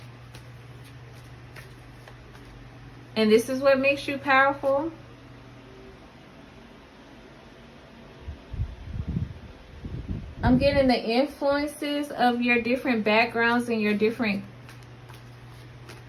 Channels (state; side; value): identical; both; correlation 1.00